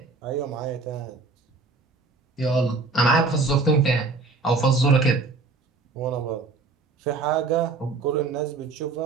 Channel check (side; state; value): left; quieter; 3.9 dB